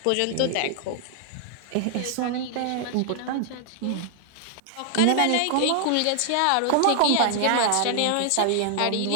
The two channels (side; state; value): both; different; correlation 0.00